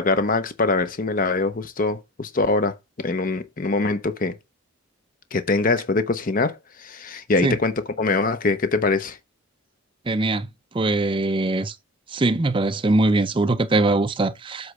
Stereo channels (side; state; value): both; normal; correlation 0.38